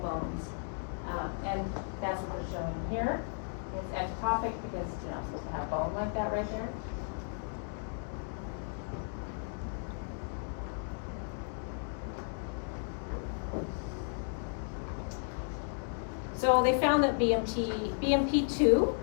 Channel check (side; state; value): right; silent; 55 dB below the other